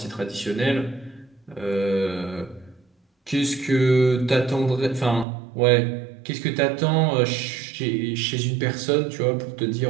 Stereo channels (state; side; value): drops out; left; at 5.2 s